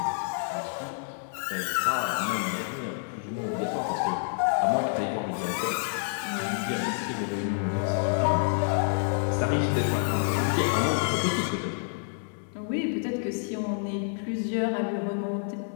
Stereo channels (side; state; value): right; silent; digital silence